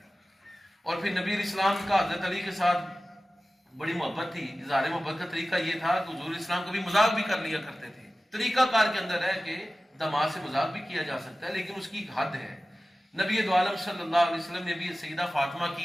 اور پھر نبی علیہ السلام کا حضرت علی کے ساتھ بڑی محبت تھی۔ اظہار محبت کا طریقہ یہ تھا کہ حضور اسلام کبھی مذاق بھی کر لیا کرتے تھے۔ طریقہ کار کے اندر ہے کہ داماد سے مذاق بھی کیا جا سکتا ہے، لیکن اس کی ایک حد ہے۔ نبی دو عالم صلی اللہ علیہ وسلم نے بھی سیدہ فاطمہ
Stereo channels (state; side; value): normal; both; correlation 0.96